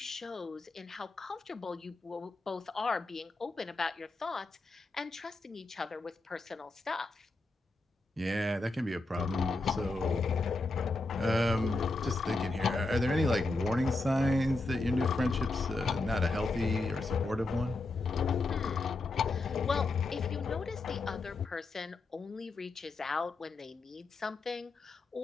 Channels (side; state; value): right; quieter; 3.2 dB